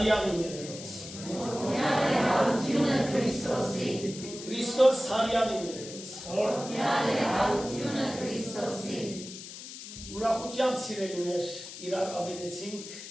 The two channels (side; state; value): left; noise; hiss, 12 dB below the sound